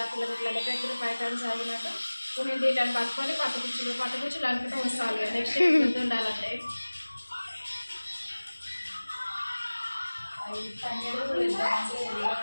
లెక్క 5 times ఆగినట్టు కొన్ని దీటాన్ని పట్టుకొని పట్టుకుచ్చులు అనుకుంటూ వస్తాను. నెక్స్ట్ గుర్తు ఉండాలంటే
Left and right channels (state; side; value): inverted; both; correlation -1.00